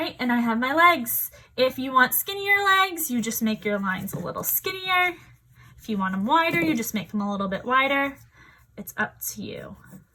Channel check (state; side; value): identical; both; correlation 1.00